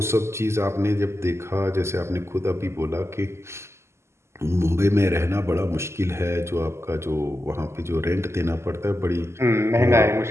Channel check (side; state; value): left; late; 0.13 ms